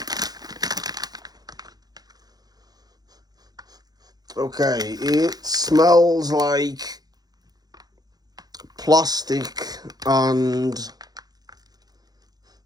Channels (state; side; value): late; left; 0.19 ms